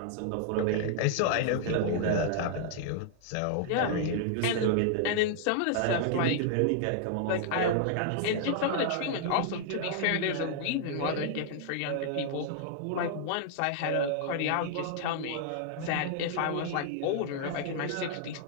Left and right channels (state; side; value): different; both; correlation -0.01